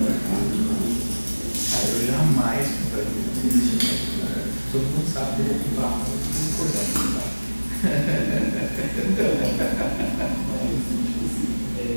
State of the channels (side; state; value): both; inverted; correlation -1.00